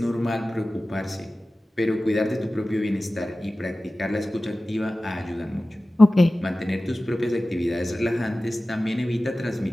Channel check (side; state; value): both; normal; correlation 0.96